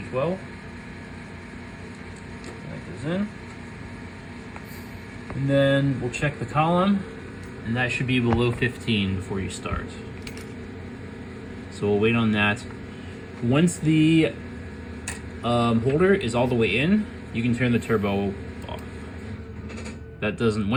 That goes in. And then we'll check the column, and that should be below 15 before you start. So we'll wait on that. Once the holder is all the way in, you can turn the turbo off. That doesn't,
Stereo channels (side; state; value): both; identical; correlation 1.00